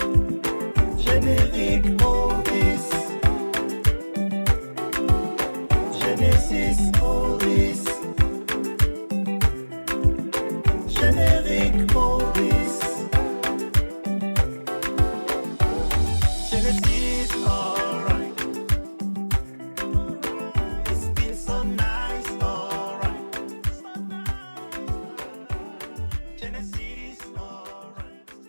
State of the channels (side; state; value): both; inverted; correlation -1.00